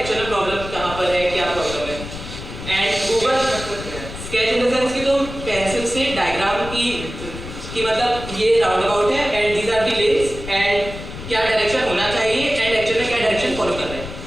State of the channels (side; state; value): left; noise; rumble, 11 dB below the sound